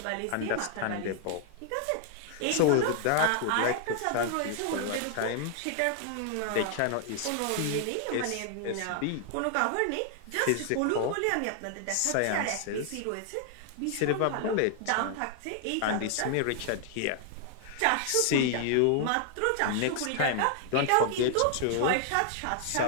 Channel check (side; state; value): both; different; correlation 0.00